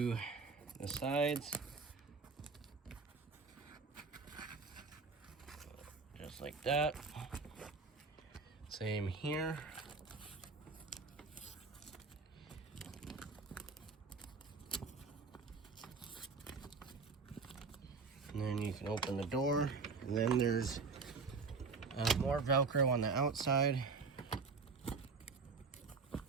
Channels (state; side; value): quieter; left; 4.6 dB